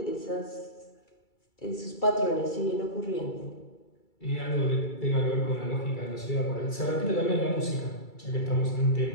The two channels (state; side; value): late; right; 2.3 ms